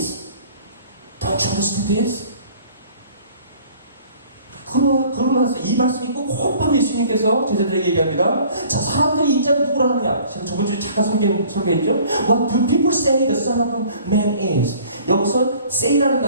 Don't you understand this? 그러고 나서 이 말씀이 있고 곧바로 예수님께서 제자들에게 얘기합니다. 자, 사람들이 인자를 누구라 하느냐? 제가 저번 주에 잠깐 소개했죠? What do people say the Son of Man is? 여기서 say라는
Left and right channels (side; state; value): both; inverted; correlation -0.52